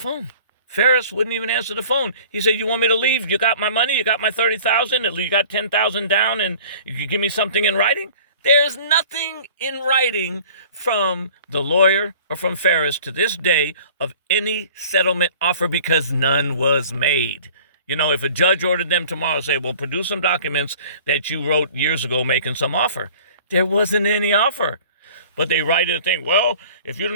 He said, you want me to leave? You got my money? You got my $30,000? You got $10,000 down, and you can give me something in writing? There's nothing in writing from the lawyer or from Ferris to this day of any settlement offer, because none was made. You know, if a judge ordered them tomorrow, say, well, produce some documents that you wrote years ago making some offer. There wasn't any offer. But they write in a thing, well, if you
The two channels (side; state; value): both; inverted; correlation -0.47